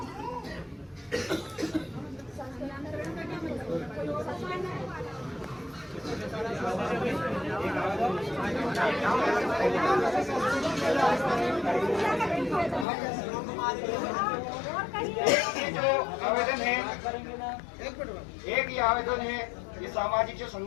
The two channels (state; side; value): drops out; right; at 12.9 s